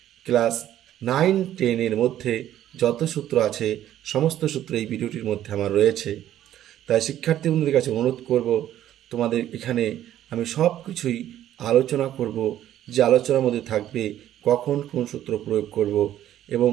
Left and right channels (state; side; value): quieter; left; 12.1 dB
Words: ক্লাস 9-10 মধ্যে যত সূত্র আছে সমস্ত সূত্র এই ভিডিওটির মধ্যে আমার রয়েছে। তাই শিক্ষার্থী বন্ধুদের কাছে অনুরোধ করব, তোমাদের এখানে আমি সব কিছুই আলোচনা করব, যে আলোচনার মধ্যে থাকবে কখন কোন সূত্র প্রয়োগ করব এবং